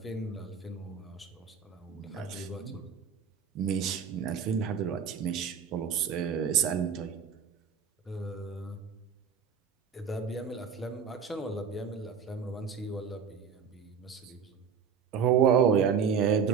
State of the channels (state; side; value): quieter; left; 6.8 dB